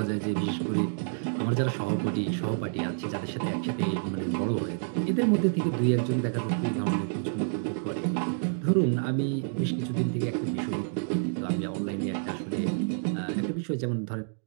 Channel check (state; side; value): silent; left; digital silence